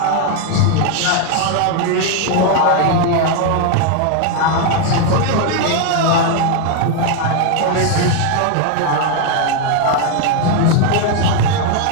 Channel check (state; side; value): different; both; correlation 0.01